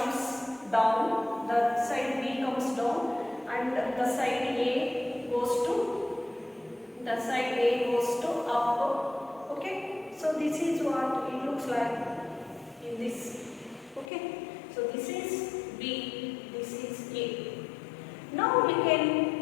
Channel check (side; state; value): right; drops out; at 14.1 s